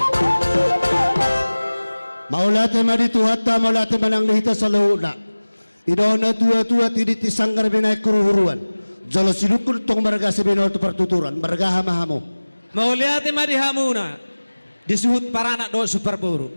Maulate maditu hatta maulate manang lihita sa launa. Idona tua-tua tidit isanggar binay kuruhuruan. Jalo silukul tong marga sa binol to partuturan. Marga hamahamo. Maulate madihamuna. Disuhut parana do superburu.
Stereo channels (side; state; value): both; inverted; correlation -1.00